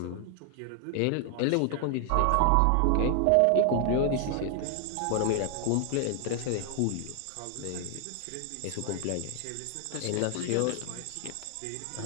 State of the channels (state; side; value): different; both; correlation 0.00